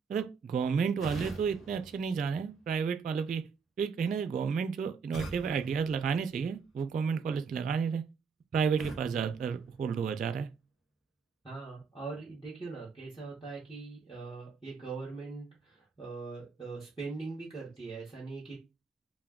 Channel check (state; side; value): quieter; left; 5.7 dB